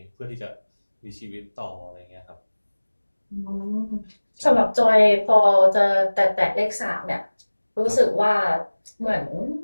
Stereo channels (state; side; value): inverted; both; correlation -1.00